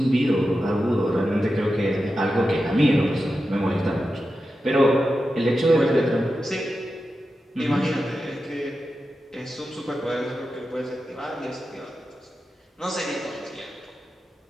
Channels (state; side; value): normal; both; correlation 0.91